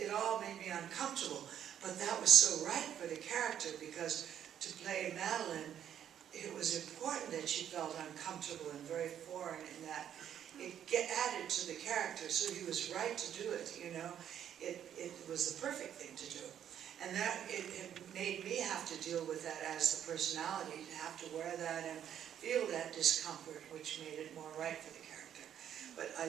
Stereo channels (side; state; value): left; quieter; 9.8 dB